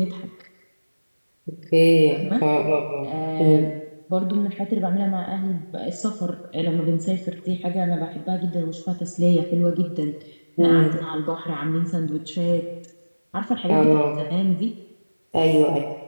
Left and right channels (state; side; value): inverted; both; correlation -1.00